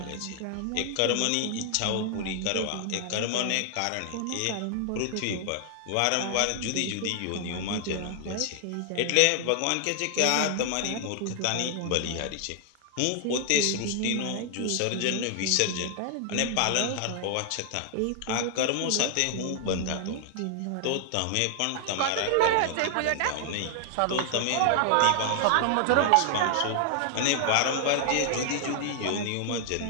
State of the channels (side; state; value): both; different; correlation 0.00